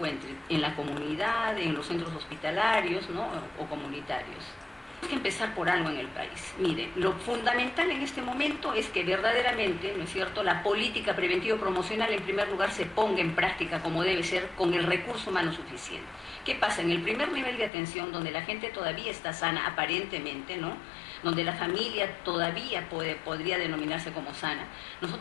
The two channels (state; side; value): drops out; right; at 17.7 s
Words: en la comunidad, en los centros hospitalarios, ¿no?, o comunitarios. Tenemos que empezar por algo en el país. Mire, lo fundamental en este momento es que verdaderamente, ¿no es cierto?, la política preventivo-promocional en primer lugar se ponga en práctica como debe ser con el recurso humano suficiente. ¿Qué pasa? En el primer nivel de atención, donde la gente todavía está sana, aparentemente, ¿no?, donde la familia todavía podría denominarse como sana,